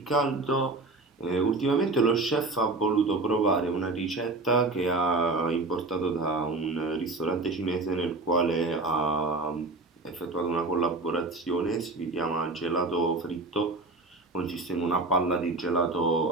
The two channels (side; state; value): left; quieter; 3.1 dB